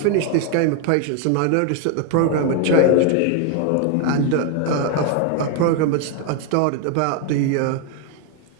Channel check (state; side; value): different; both; correlation 0.01